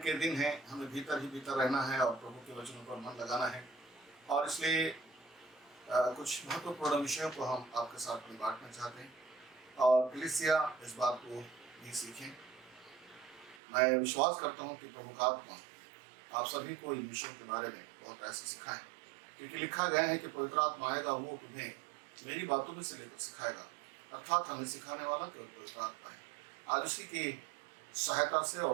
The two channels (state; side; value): drops out; left; at 13.6 s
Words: दिन हैं, हमें भीतर ही भीतर रहना है और प्रभु के वचनों पर मन लगाना है, और इसलिए कुछ महत्वपूर्ण विषयों को हम आपके साथ में बांटना चाहते हैं और कलीसिया इस बात को भी सीखें। मैं विश्वास करता हूं कि प्रभु का आत्मा आप सभी को इन विषयों के बारे में बहुत ऐसे सिखाएं, क्योंकि लिखा गया है कि पवित्र आत्मा आएगा, वो तुम्हें मेरी बातों में से लेकर सिखाएगा। अर्थात हमें सिखाने वाला केवल पवित्र आत्मा है। आज उसी की सहायता से